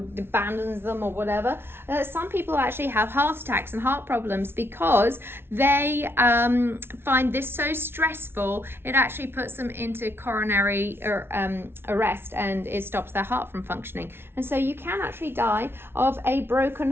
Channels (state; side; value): late; left; 0.11 ms